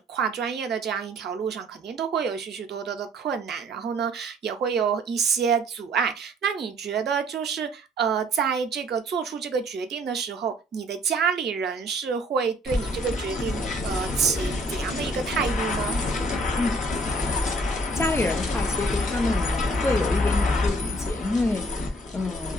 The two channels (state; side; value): normal; both; correlation 0.59